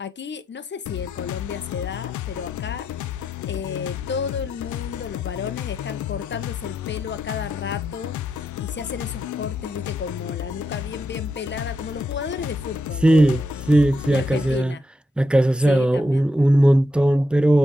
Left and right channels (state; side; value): normal; both; correlation 0.82